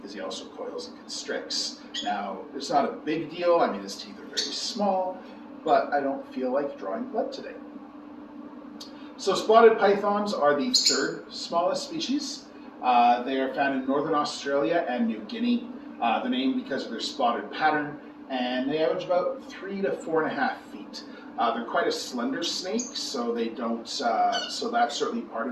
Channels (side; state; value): both; identical; correlation 1.00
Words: he also coils and constricts. Now, it's not a big deal. I mean, his teeth are very small, but I don't feel like drawing blood today. So spotted pythons are the 3rd smallest species. They are found in northern Australia and New Guinea. They're named because of their spotted pattern, and they average about 3 to 4.5 feet. They're quite a slender snake, so they don't. So that's certainly part